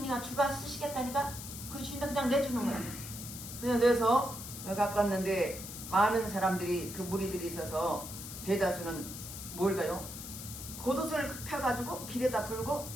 주가 쓰시겠다니까 그 주인도 그냥 내주는 거예요. 그래서 내서 갖고 왔는데 많은 사람들이 그 무리들이 있어서 대다수는 뭘까요? 겉옷을 펴가지고 길에다 풀고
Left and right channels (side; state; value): left; noise; hiss, 10 dB below the sound